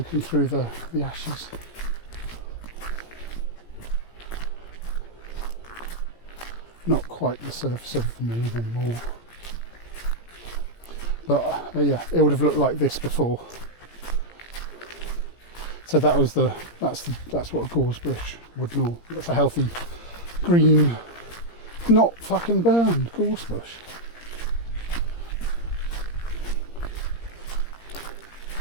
through the ashes. Not quite the surface of the moon anymore, but yeah, it would have looked like this before. So that's what a gorse bush would know. That's a healthy green, not fucking burned gorse bush.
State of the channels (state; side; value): late; right; 17 ms